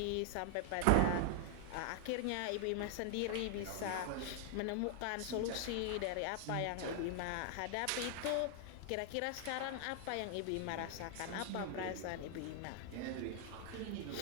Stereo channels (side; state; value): both; different; correlation 0.00